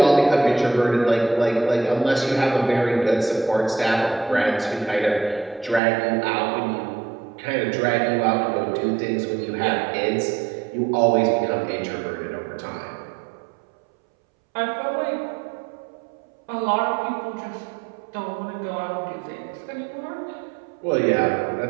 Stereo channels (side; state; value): left; drops out; at 5.8 s